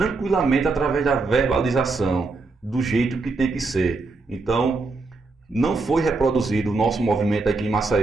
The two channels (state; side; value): quieter; left; 3.7 dB